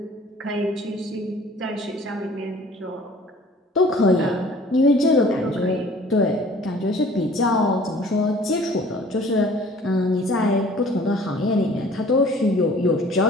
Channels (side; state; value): both; normal; correlation 0.51